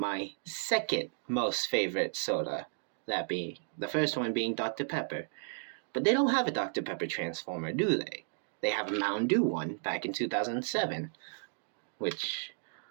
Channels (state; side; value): silent; left; digital silence